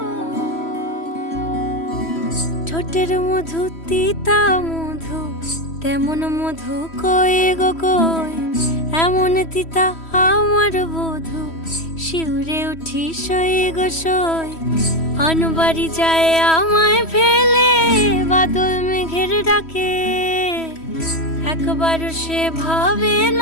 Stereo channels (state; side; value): late; right; 3.1 ms